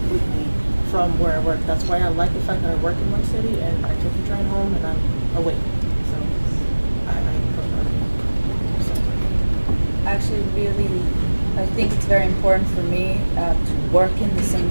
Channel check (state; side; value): inverted; both; correlation -1.00